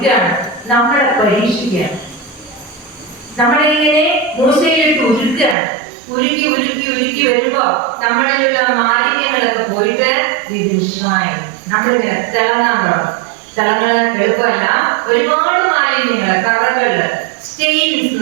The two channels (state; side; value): drops out; left; at 5.6 s